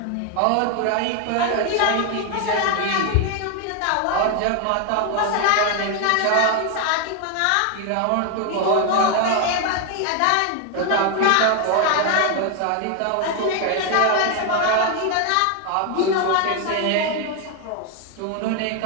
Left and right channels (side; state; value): both; different; correlation 0.01